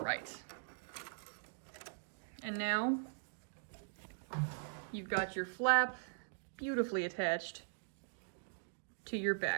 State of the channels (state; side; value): silent; left; digital silence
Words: right, and now you've got your flap beautifully attached to your